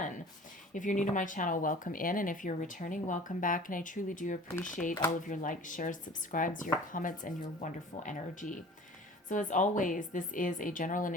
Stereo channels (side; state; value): both; normal; correlation 0.45